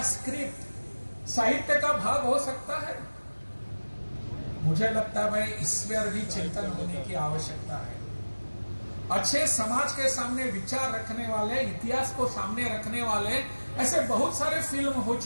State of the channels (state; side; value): inverted; both; correlation -1.00